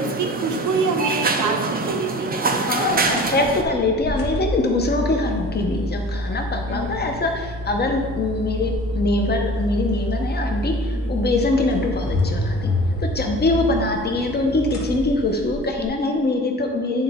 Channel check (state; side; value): normal; both; correlation 0.42